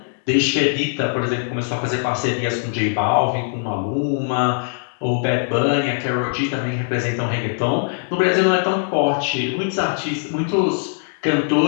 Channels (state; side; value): silent; right; 65 dB below the other